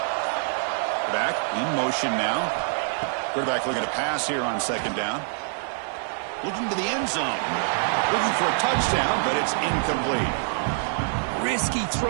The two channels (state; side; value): silent; left; 57 dB below the other